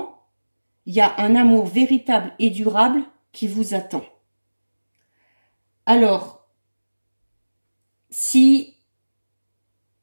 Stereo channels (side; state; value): both; inverted; correlation -1.00